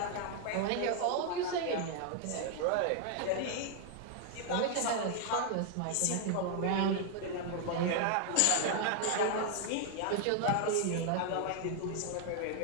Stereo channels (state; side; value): different; both; correlation 0.00